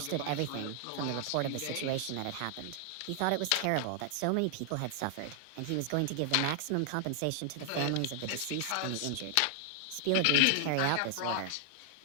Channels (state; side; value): different; both; correlation 0.00